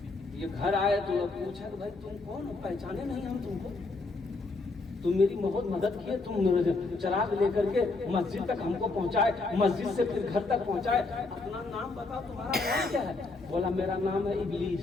ये घर आए तो पूछा कि भाई तुम कौन हो? पहचाने नहीं हम तुमको, तुम मेरी बहुत मदद किए, तुम मेरे चराग लेकर के मस्जिद तक हमको पहुंचाए, मस्जिद से फिर घर तक पहुंचाए। अपना नाम बताओ, तुम्हारा नाम क्या है? बोला मेरा नाम है इब्लीस।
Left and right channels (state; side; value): quieter; right; 3.6 dB